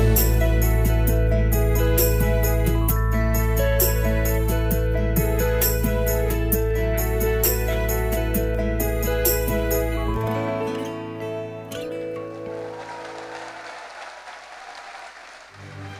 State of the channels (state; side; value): identical; both; correlation 1.00